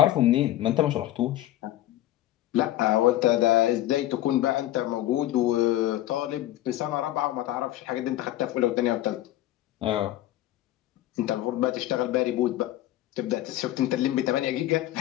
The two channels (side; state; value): right; quieter; 14.5 dB